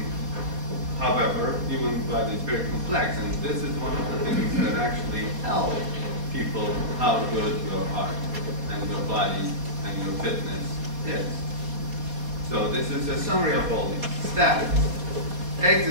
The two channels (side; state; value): left; late; 4.2 ms